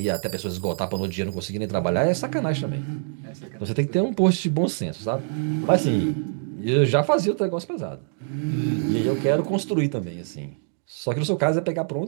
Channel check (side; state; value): left; silent; 62 dB below the other